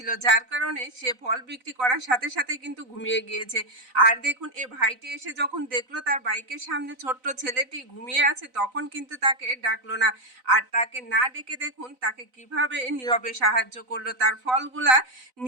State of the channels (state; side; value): late; left; 4.0 ms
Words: যার কারণে সে ফল বিক্রি করার সাথে সাথে কিন্তু ঘুমিয়ে গিয়েছে। আর দেখুন এই ভাইটি এসে যখন দেখলো তার বাইকের সামনে ছোট্ট ছেলেটি ঘুমিয়ে আছে, তখন কিন্তু তাকে ডাকলো না। আর তাকে না ডেকে দেখুন তাকে কিভাবে নীরবে সাহায্য করলো, তার ফলগুলা